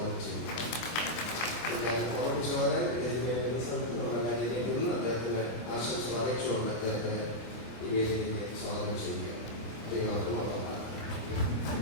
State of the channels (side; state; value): right; late; 25 ms